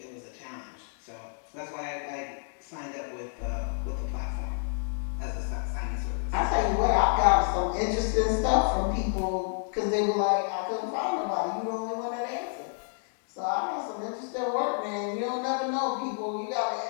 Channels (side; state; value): right; silent; digital silence